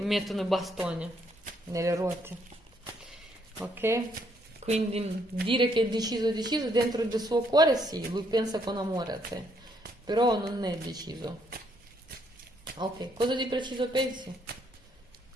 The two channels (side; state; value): both; normal; correlation 0.71